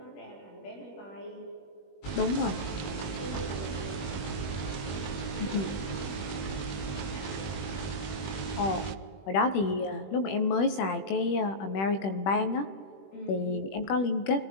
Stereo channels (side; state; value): right; late; 21 ms